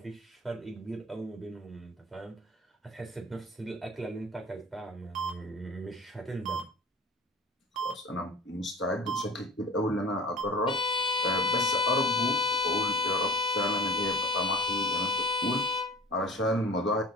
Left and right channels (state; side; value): normal; both; correlation 0.41